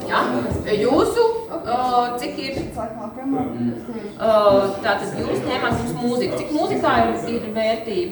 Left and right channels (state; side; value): identical; both; correlation 1.00